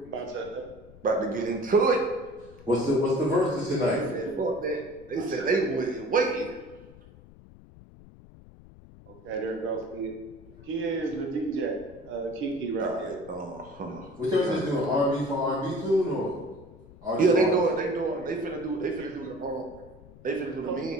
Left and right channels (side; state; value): left; noise; rumble, 21 dB below the sound